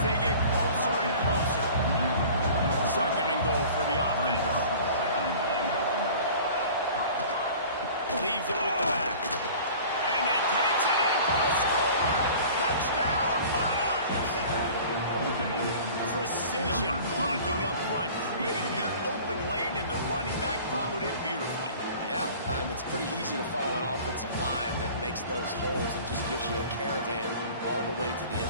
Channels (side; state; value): both; inverted; correlation -0.44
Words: they get closer and closer. 2nd and goal for the offense. Leaves it with the back. And he takes it in for a score. Touchdown, Monarchs. Precision blocking up front. Created the open lane, and the running back followed it beautifully. Yeah, it's pretty easy to follow an offensive line that makes those holes and just gives you a caravan all the way to the